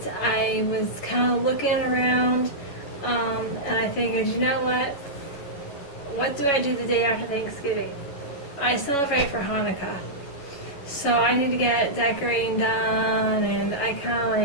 I was kind of looking around, and I figured, you know what? What do I do the day after Thanksgiving? I celebrate for Hanukkah. So I need to get decorating done, and I kind of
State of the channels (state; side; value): late; right; 11 ms